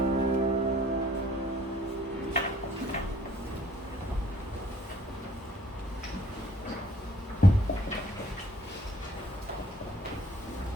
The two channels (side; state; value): both; normal; correlation 0.60